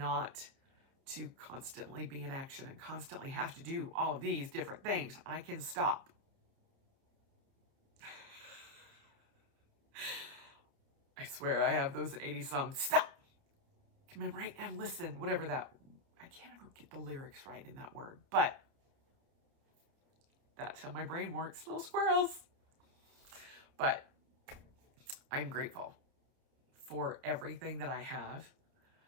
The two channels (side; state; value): left; late; 30 ms